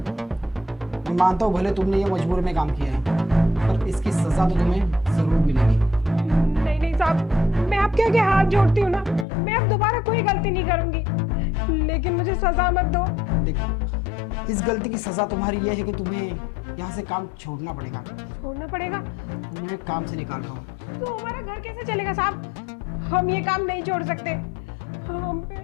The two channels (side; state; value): right; drops out; at 9.2 s